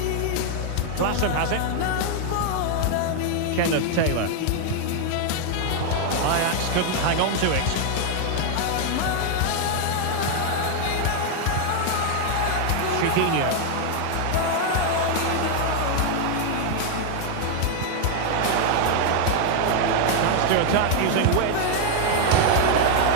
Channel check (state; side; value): different; both; correlation 0.00